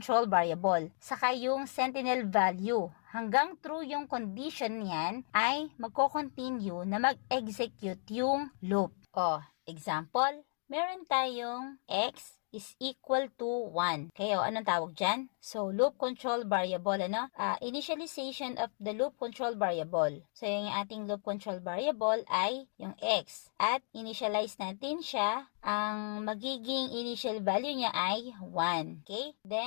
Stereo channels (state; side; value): silent; right; 55 dB below the other